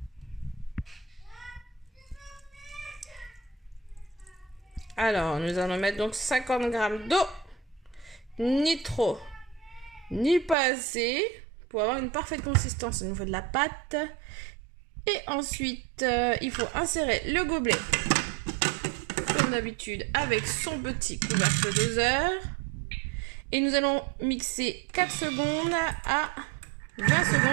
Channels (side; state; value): left; drops out; at 10.6 s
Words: Alors, nous allons mettre donc 50 g d'eau. Ni trop, ni pas assez, pour avoir une parfaite consistance au niveau de la pâte. Et ensuite, il faut insérer le gobelet, comme d'habitude, avec son petit couvercle doseur. Et nous allons mixer 4 secondes à 20